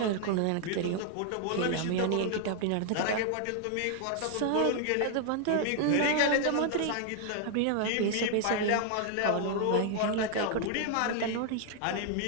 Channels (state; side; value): different; both; correlation 0.00